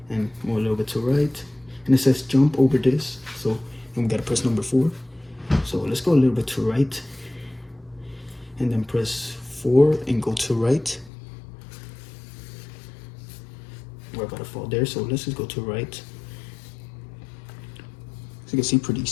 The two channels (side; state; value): right; drops out; at 11.1 s